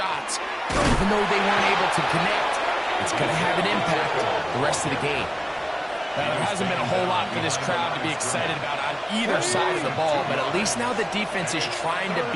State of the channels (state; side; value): identical; both; correlation 1.00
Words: even though they weren't able to connect. It's going to have an impact the rest of the game. There hasn't been a whole lot for this crowd to be excited about on either side of the ball, but at least now the defense is trying to